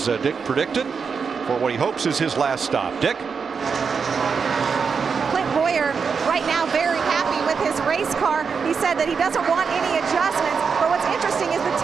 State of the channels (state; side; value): quieter; left; 5.8 dB